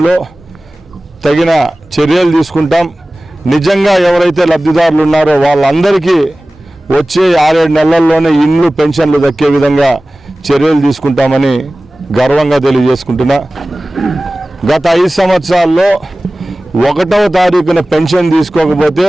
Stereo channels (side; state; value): both; normal; correlation 0.98